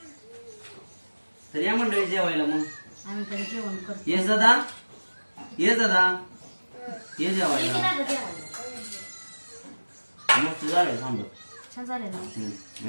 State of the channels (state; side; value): inverted; both; correlation -1.00